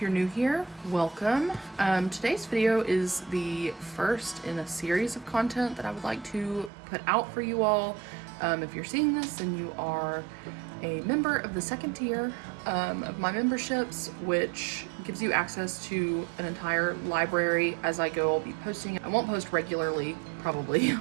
you're new here, welcome. Today's video is the first in a series of content that I would like to put out for you all. If you're seeing this, then you are a member of the second tier of my memberships, which gives you access to an entire library. As I go, I'll be posting. I won't post regularly, probably,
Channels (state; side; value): drops out; left; at 6.7 s